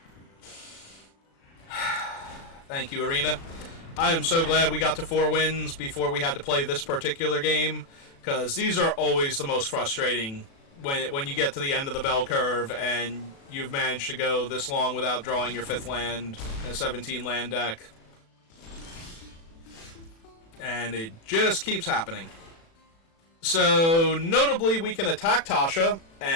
Thank you, Arena. I am so glad we got to 4 wins before we had to play this particular game, because these are always the most frustrating when you get to the end of the bell curve and you've managed to go this long without drawing your 5th land in a 17-land deck. And it just keeps happening. So, notably, we can attack Tasha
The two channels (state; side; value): late; right; 36 ms